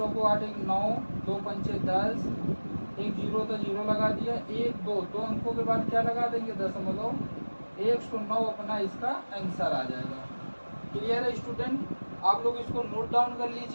8, 1 9, 2 पंचे 10, एक जीरो था जीरो लगा दिया, 1 2 दो अंकों के बाद क्या लगा देंगे, 109 अपना इसका आंसर आ जाएगा। क्लियर है स्टूडेंट, आप लोग इसको नोट डाउन कर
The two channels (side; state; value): both; inverted; correlation -1.00